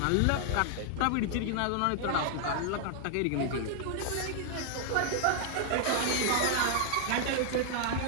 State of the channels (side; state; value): both; different; correlation 0.00